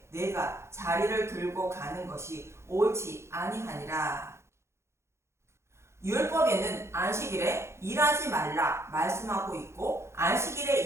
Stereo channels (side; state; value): left; late; 0.13 ms